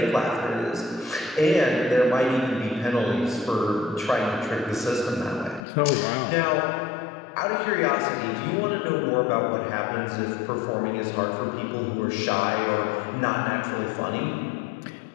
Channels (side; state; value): right; drops out; at 5.6 s